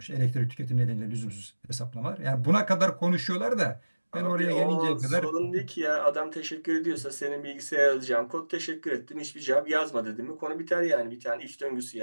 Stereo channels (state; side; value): inverted; both; correlation -1.00